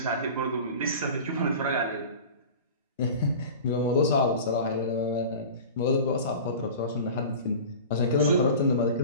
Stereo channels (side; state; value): both; inverted; correlation -0.37